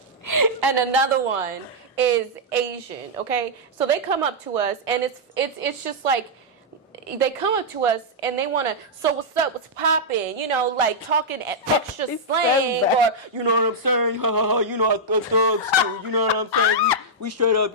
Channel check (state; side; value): normal; both; correlation -0.07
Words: another one is Asian. Okay, so they come up to us, and it's just like, they come up to us and they want to, so what's up, what's poppin', you know, like talking extra slang, or, you know what I'm saying, ha ha ha, you know, I thugs too, you know what I'm saying, we straight